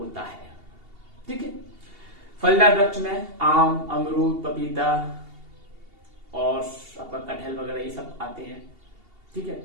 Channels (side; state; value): left; late; 2.8 ms